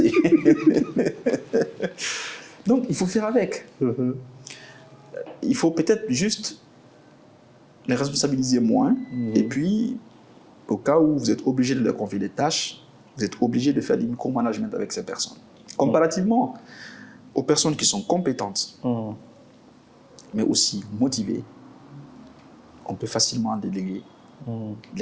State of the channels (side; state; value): both; identical; correlation 1.00